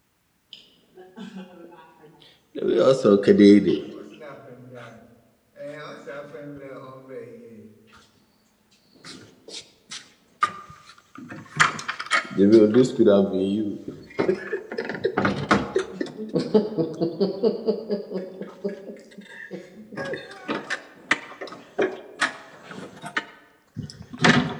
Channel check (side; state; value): both; identical; correlation 1.00